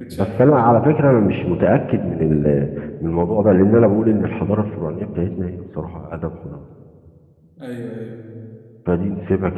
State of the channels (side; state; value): both; identical; correlation 1.00